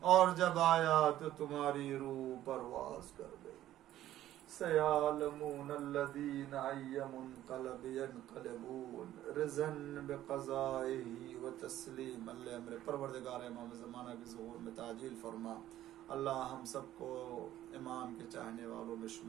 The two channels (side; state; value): left; quieter; 13.2 dB